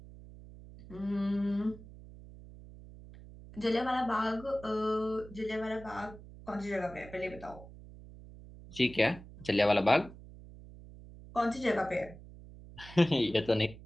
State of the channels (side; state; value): right; noise; hum, 17 dB below the sound